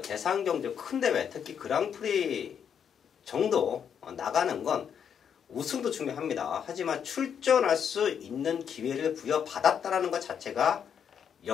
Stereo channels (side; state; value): right; quieter; 7.9 dB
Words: 대상경주 큰 대회, 특히 그랑프리 정도 나가는 건 우승도 중요합니다. 하지만 출전할 수 있는 기회를 부여받았다는 것 자체가